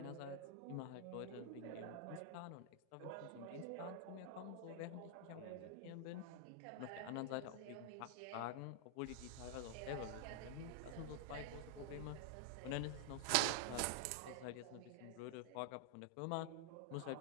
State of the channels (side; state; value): both; different; correlation 0.00